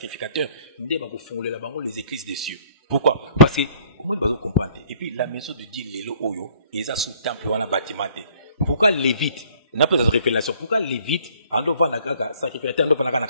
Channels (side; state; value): both; inverted; correlation -0.58